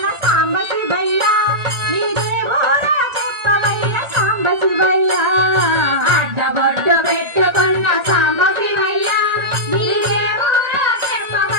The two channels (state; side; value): late; left; 1.8 ms